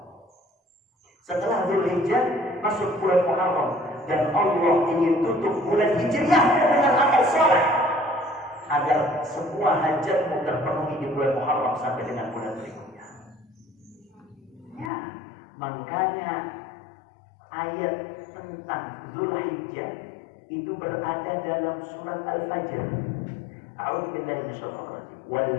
Setelah Dzulhijjah masuk bulan Muharram, dan Allah ingin tutup bulan Hijriah dengan amal saleh agar semua hajatmu terpenuhi di bulan Muharram sampai dengan bulan berikutnya. Ya, makanya ayat tentang Dzulhijjah itu berada dalam surat Al-Fajr. A'udzu billahi minasyaitonir rajim. Wal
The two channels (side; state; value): right; drops out; at 14.9 s